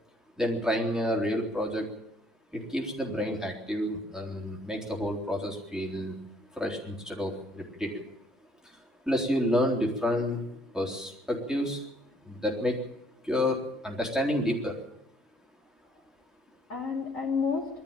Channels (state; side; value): normal; both; correlation 0.63